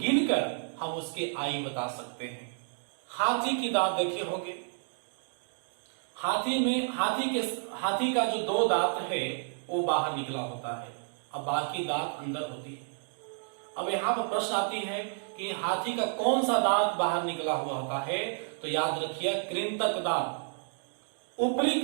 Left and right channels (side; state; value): left; silent; digital silence